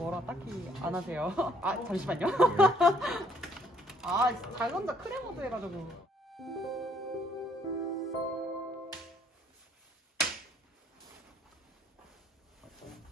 딱히 안 하세요. 아 잠시만요. 아 자전자 크레모드 해가지고.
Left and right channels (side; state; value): both; normal; correlation 0.64